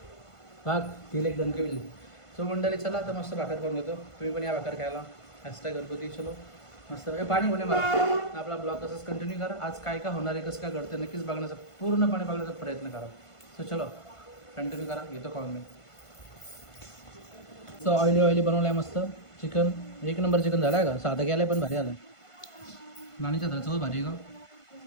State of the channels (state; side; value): late; right; 1.5 ms